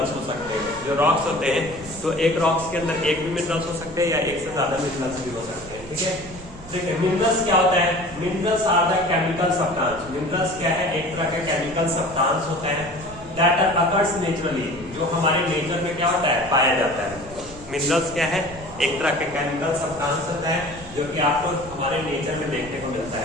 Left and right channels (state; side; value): noise; right; rumble, 17 dB below the sound